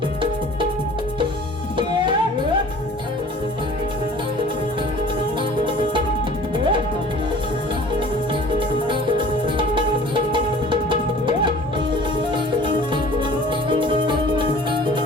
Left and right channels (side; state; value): both; normal; correlation 0.47